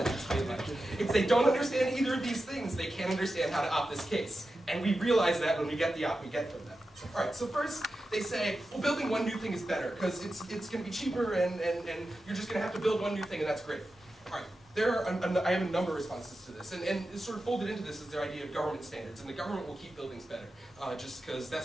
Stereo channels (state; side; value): normal; both; correlation 0.92